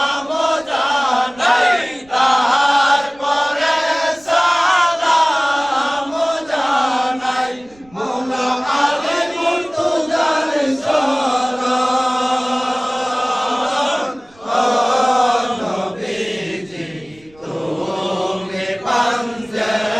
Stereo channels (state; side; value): noise; right; rumble, 28 dB below the sound